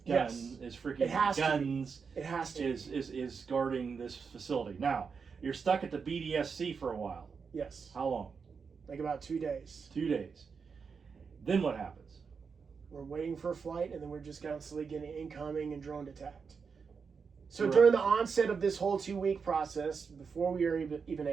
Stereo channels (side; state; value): left; quieter; 5.6 dB